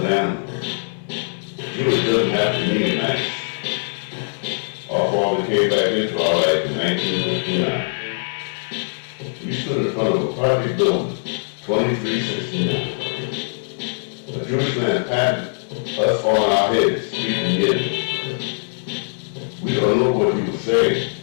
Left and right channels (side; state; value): right; silent; 65 dB below the other